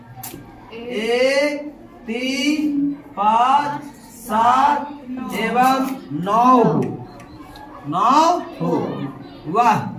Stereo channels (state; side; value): identical; both; correlation 1.00